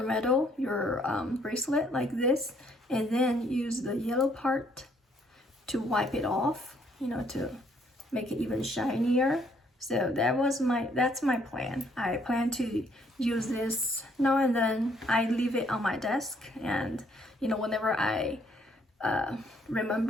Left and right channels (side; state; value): both; normal; correlation 0.66